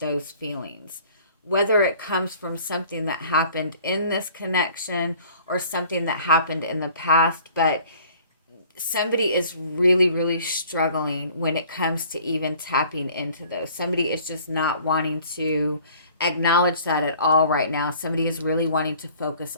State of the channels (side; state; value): both; inverted; correlation -0.53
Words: feelings, whether it comes from something that happened in this connection or something that happened in the past. But somebody is really, really struggling when it comes to even tapping into those. Somebody is just not wanting to acknowledge that at all right now. Somebody is really wanting to focus